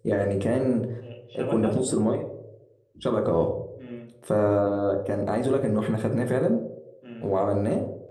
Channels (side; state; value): both; identical; correlation 1.00